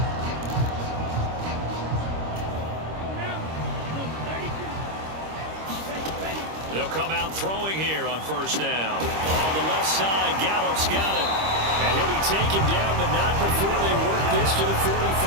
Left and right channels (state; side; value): late; left; 25 ms